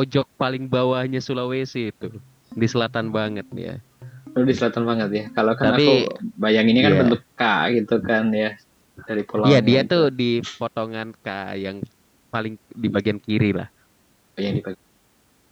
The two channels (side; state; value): both; identical; correlation 1.00